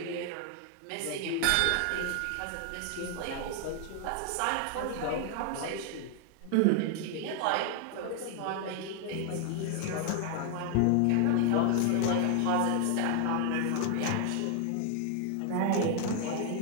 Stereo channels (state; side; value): different; both; correlation 0.00